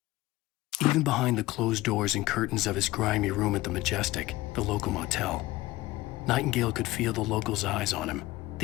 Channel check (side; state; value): right; quieter; 18.4 dB